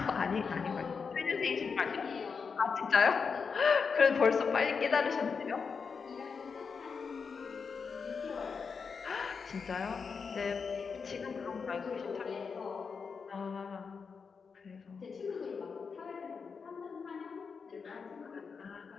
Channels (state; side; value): quieter; right; 5.5 dB